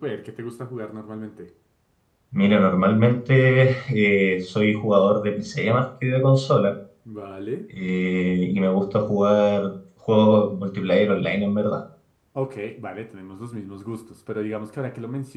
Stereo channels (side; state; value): both; identical; correlation 1.00